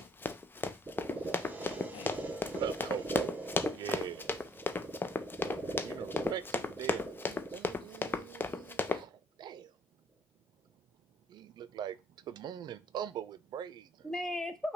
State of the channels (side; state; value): both; normal; correlation 0.64